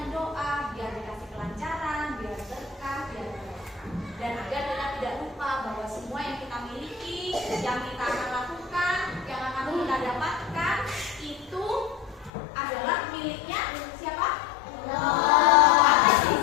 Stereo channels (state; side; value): drops out; right; at 12.3 s